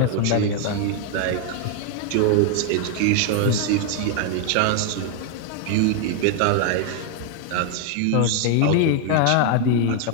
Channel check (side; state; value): both; different; correlation 0.00